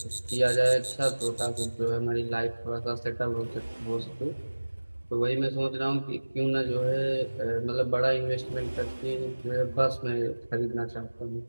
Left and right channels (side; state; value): both; inverted; correlation -1.00